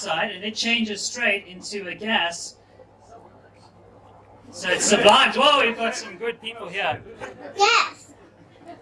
and it changes straight into a gas. So it's sublimed. Whoa, we've got some good people here. Yes.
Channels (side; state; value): both; identical; correlation 1.00